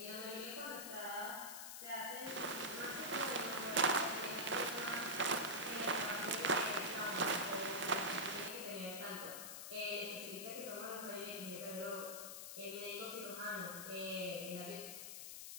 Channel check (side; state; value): left; noise; hiss, 7 dB below the sound